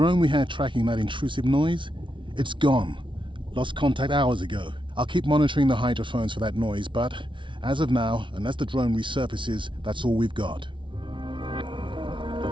we had tracking that intrusive noise, it's gone. Lost contact hours ago. I'll keep monitoring the hydrophones for that noise, but as of now, unless the drone resurfaces, that's all we've got.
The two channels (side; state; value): left; late; 0.24 ms